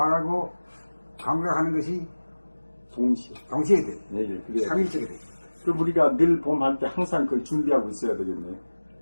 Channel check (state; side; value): inverted; both; correlation -1.00